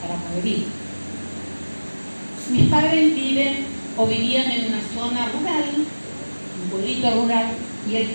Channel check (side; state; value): both; inverted; correlation -1.00